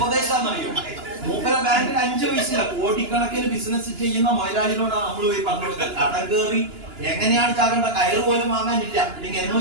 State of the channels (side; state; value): left; late; 2.9 ms